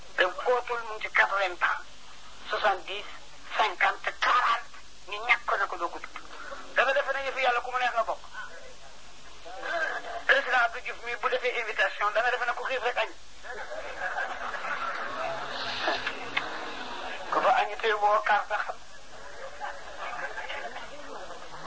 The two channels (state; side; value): identical; both; correlation 1.00